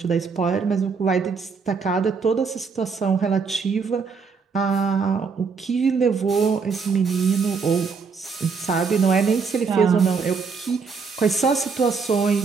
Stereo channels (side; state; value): left; quieter; 5.2 dB